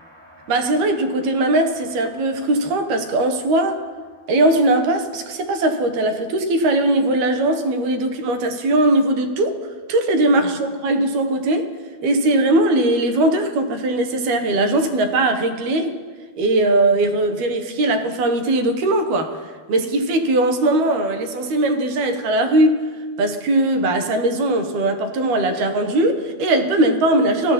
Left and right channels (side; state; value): left; late; 12 ms